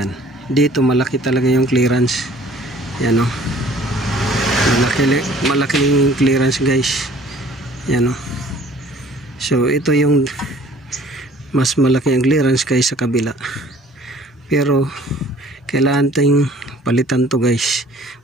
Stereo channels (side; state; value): both; normal; correlation 0.53